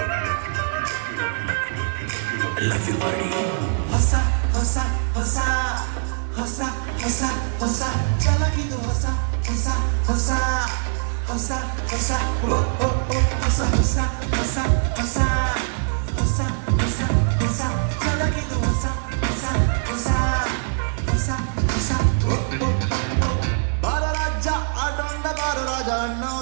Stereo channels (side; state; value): left; silent; digital silence